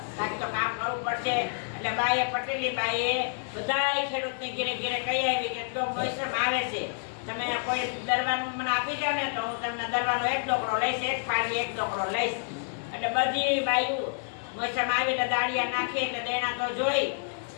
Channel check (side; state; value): right; silent; digital silence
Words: બાકી તો કામ કરવું પડશે. એટલે બાઈએ પટેલી બાઈએ બધાય ખેડૂતને ઘેરે ઘેરે કહી આવી કે જો મોસમ આવે છે, તમે કોઈ દરવાનું મને આપી જાવ ને તો હું તમને દરવાનો 1 ડોકરો લઈશ, 1 પાડી 1 ડોકરો લઈશ. એટલે બધી બાયું મોસમ આવી એટલે દાળિયા નાખી એટલે દેણા તો જોઈ